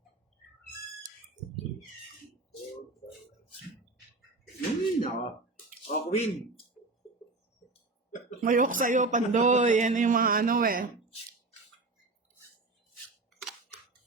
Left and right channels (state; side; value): quieter; left; 3.4 dB